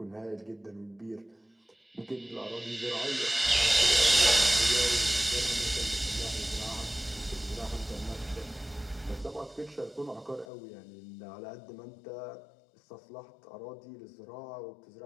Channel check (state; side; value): drops out; right; at 10.5 s